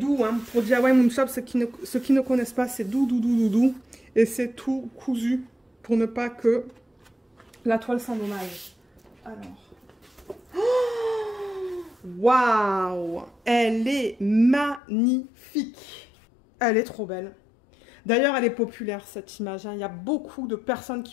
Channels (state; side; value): drops out; right; at 14.8 s